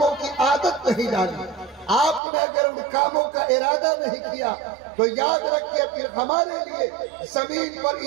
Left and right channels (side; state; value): left; drops out; at 2.2 s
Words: کی عادت نہیں ڈالی، آپ نے اگر ان کاموں کا ارادہ نہیں کیا تو یاد رکھیے پھر ہمارے لیے زمین پر